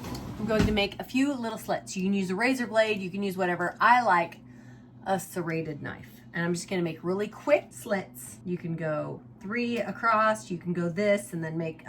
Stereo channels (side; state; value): both; identical; correlation 1.00